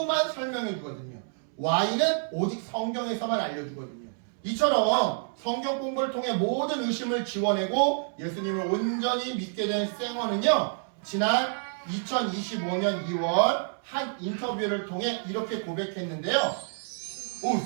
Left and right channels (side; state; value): left; silent; 59 dB below the other